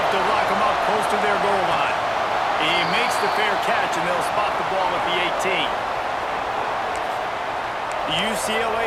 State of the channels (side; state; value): both; identical; correlation 1.00